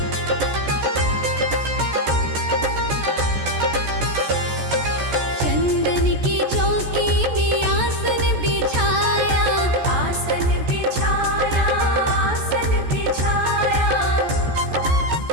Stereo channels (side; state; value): left; late; 14 ms